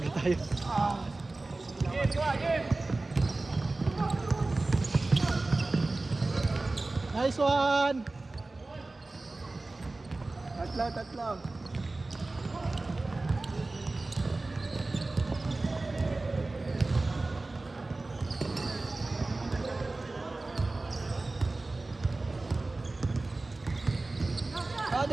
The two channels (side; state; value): left; quieter; 3.2 dB